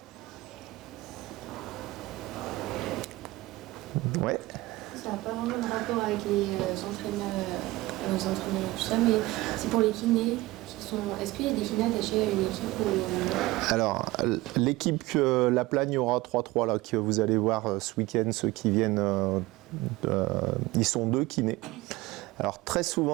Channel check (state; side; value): quieter; left; 19.5 dB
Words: Ouais. Ça n'a pas vraiment de rapport avec les entraîneurs, tout ça, mais c'est pour les kinés. Est-ce qu'il y a des kinés attachés à une équipe ou... Alors, l'équipe La Plagne aura 3-3 là, que vous allez voir ce week-end, ceux qui viennent, ils sont 2 kinés. Alors très